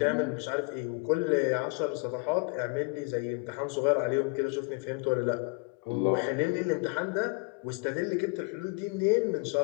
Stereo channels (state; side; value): quieter; right; 30.9 dB